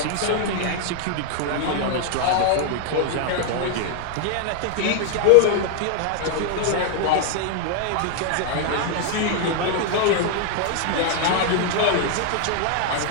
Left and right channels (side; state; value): both; different; correlation 0.00